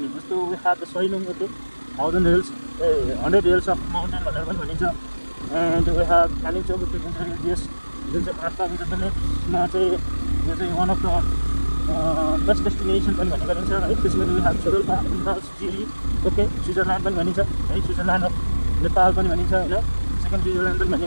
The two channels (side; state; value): both; inverted; correlation -1.00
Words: जस्तो we have the Sailung, okay, 100 hills of mountain भनेर पनि भनिन्छ। एन्ड वी हेभ कालिम्पोङ जुन चाहिँ रिलिजियस जुन चाहिँ आस्था विरुद्धमा चाहिँ यो चाहिँ one of the best destination पनि भन्ने गरिन्छ है। त्यसमा we have Tsho Rolpa, Jiri, okay, Switzerland पनि भनिन्छ है। स्विजरल्यान्ड अफ नेपाल पनि भनिन्छ होइन। सेकेन्ड स्विजरल्यान्ड पनि